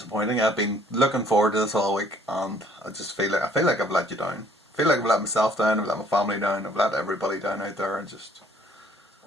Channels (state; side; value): normal; both; correlation 0.60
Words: I've been looking forward to this all week, and I feel like I've let you down. I feel like I've let myself down. I've let my family down. I've let everybody down out there, and just